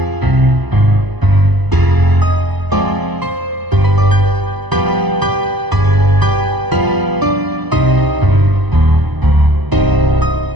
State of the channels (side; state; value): left; late; 1.0 ms